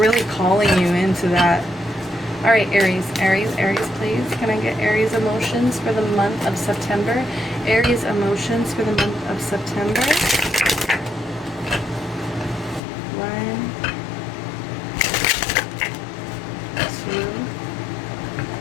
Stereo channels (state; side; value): drops out; right; at 12.8 s